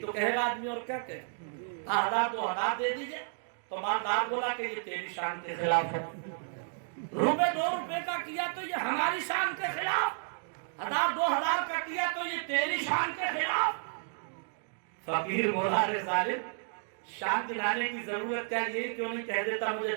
कहेगा आदमी, और क्या कहे, 1000-2000 दे दीजिए। तो मालदार बोला कि ये तेरी शान के खिलाफ है, रुपये 2 रुपये का किया तो ये हमारी शान के खिलाफ, 1000-2000 का किया तो ये तेरी शान के खिलाफ। फकीर बोला, रे जालिम, शान दिलाने की जरूरत क्या, ये क्यों नहीं कह देता मुझे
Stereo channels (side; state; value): left; silent; digital silence